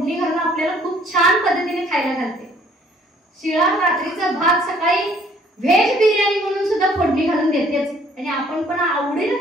घालून आपल्याला खूप छान पद्धतीने खायला घालते. शिळा रात्रीचा भात सकाळी व्हेज बिर्याणी म्हणून सुद्धा फोडणी घालून देतेच आणि आपण पण आवडीने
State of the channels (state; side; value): normal; both; correlation 0.60